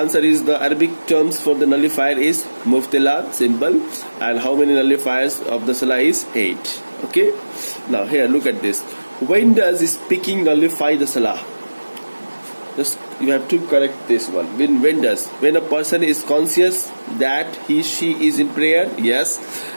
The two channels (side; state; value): both; inverted; correlation -1.00